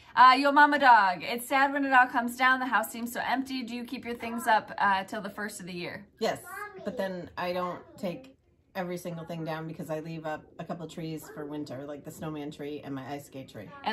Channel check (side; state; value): both; identical; correlation 1.00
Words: Yo mama dog, it's sad when it all comes down. The house seems so empty. Do you keep your things up till the first of the year? Yes, but then I don't take every single thing down because I leave up a couple trees for winter, like the snowman tree and my ice skate tree.